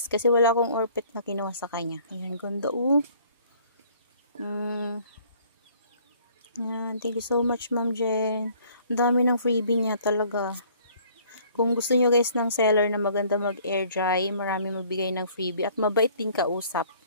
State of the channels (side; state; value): both; inverted; correlation -0.58